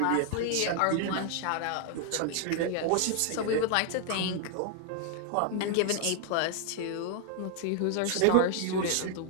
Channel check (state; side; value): different; both; correlation 0.00